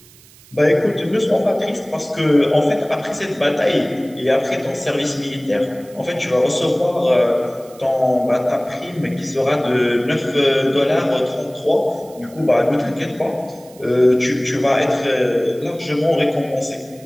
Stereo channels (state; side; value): noise; right; hiss, 25 dB below the sound